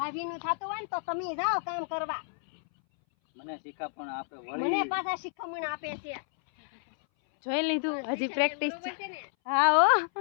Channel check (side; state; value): right; silent; 58 dB below the other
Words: થતું હોય ને તો તમે જાઓ કામ કરવા. મને શીખામણ આપે, મને પાછા શીખામણ આપે છે. જોઈ લીધું? હજી પ્રેક્ટિસ. હા હો,